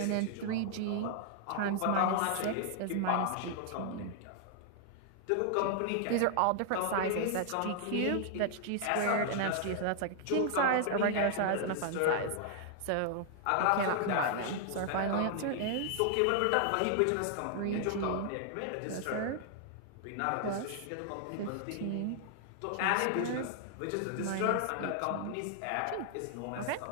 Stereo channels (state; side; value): different; both; correlation 0.00